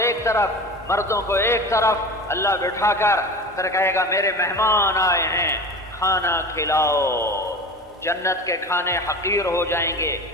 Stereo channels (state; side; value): normal; both; correlation 0.33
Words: ایک طرف، مردوں کو ایک طرف اللہ بٹھا کر پھر کہے گا میرے مہمان آئے ہیں، کھانا کھلاؤ. جنت کے کھانے حقیر ہو جائیں گے